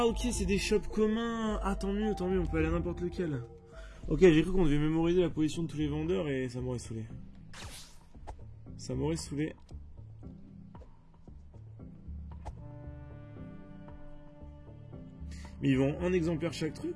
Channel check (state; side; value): identical; both; correlation 1.00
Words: ok, c'est des shops communs. Ah tant mieux, on peut aller à n'importe lequel. Ok, j'ai cru qu'on devait mémoriser la position de tous les vendeurs et ça m'aurait saoulé. Ça m'aurait saoulé. Mais ils vendent un exemplaire chaque